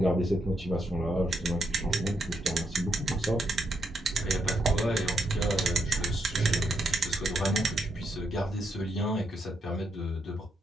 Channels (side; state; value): both; normal; correlation 0.79